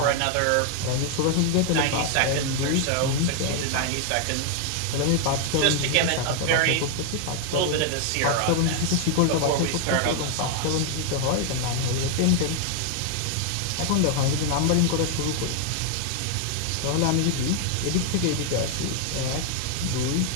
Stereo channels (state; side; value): different; both; correlation 0.00